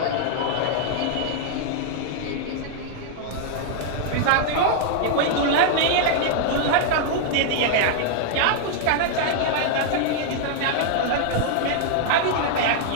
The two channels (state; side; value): different; both; correlation 0.00